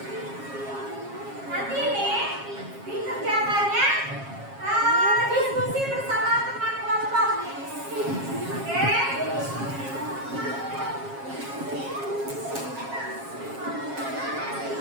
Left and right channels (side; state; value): left; late; 7.4 ms